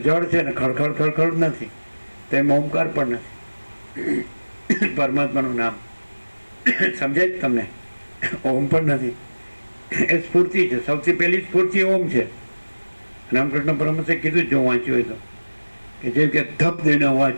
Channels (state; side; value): inverted; both; correlation -1.00